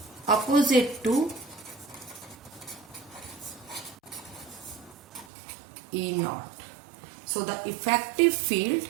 opposite to E naught. So the effective field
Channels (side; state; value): left; drops out; at 5.2 s